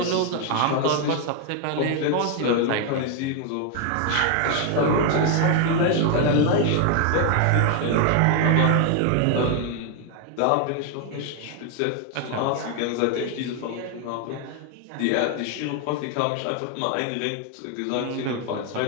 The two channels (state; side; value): different; both; correlation 0.01